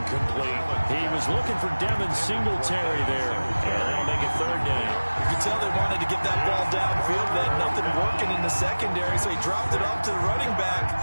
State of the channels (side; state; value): both; inverted; correlation -1.00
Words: He was looking for Devin Singletary there. And that'll make it 3rd down. You can tell they wanted to get that ball downfield. They had nothing working in the secondary, so he dropped it off to the running back.